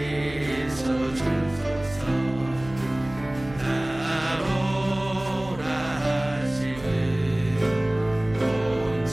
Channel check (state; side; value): noise; right; hum, 17 dB below the sound